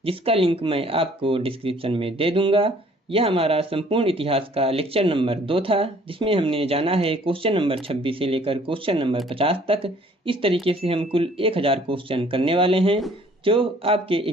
जिसका लिंक मैं आपको डिस्क्रिप्शन में दे दूंगा। यह हमारा संपूर्ण इतिहास का लेक्चर नंबर 2 था, जिसमें हमने जाना है क्वेश्चन नंबर 26 से लेकर क्वेश्चन नंबर 50 तक। इस तरीके से हम कुल 1000 क्वेश्चन करने वाले हैं, जो आपके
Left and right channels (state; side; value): normal; both; correlation 0.57